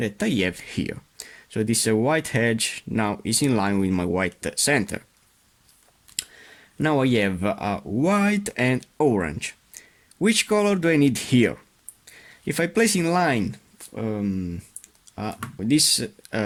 I have here. So this white edge now is in line with my white center. Now I have white and orange. Which color do I need here? If I place in line this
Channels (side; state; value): both; identical; correlation 1.00